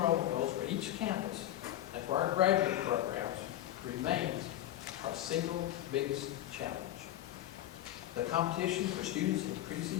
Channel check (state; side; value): quieter; right; 13.3 dB